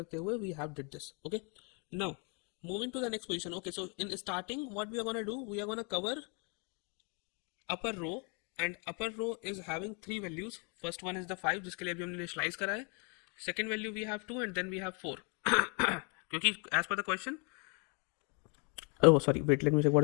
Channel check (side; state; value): right; quieter; 35.5 dB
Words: हुए we have did this. Okay, now moving to the next position. Okay, so in starting what we are going to do, we are going to cover upper row, and upper row is having 3 values. First one is the 5 जिसके लिए अभी हमने initialize करा है. Second value we have 2, and then we have 4. क्योंकि as per the question, oh sorry, wait, let me check